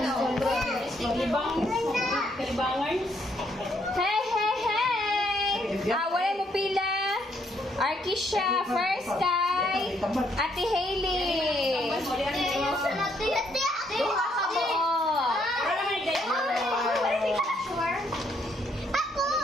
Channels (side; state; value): both; normal; correlation 0.71